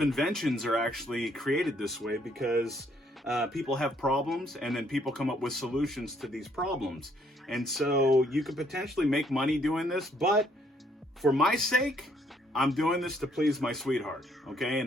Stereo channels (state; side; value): normal; both; correlation 0.67